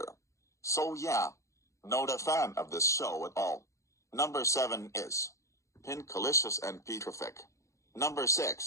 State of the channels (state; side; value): late; right; 0.15 ms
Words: So yeah, not a fan of this show at all. Number 7 is Pinkalicious and Petrific. Number